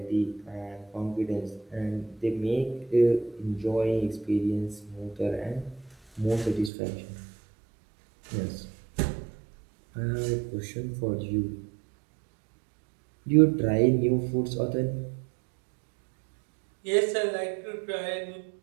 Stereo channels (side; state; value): left; drops out; at 6.7 s